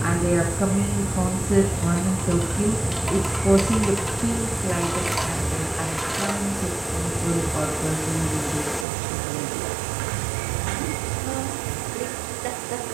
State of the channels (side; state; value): left; drops out; at 8.8 s